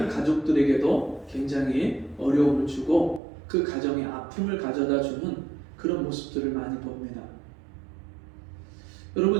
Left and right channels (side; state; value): left; drops out; at 3.2 s